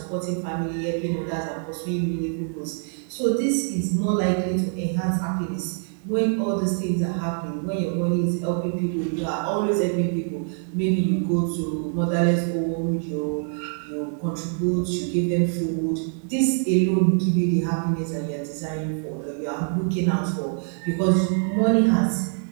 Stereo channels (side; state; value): left; silent; 59 dB below the other